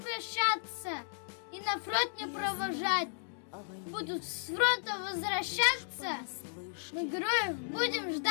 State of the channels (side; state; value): right; silent; digital silence